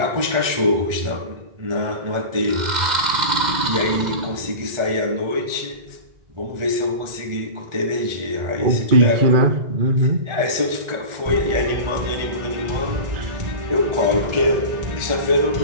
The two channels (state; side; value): late; left; 1.4 ms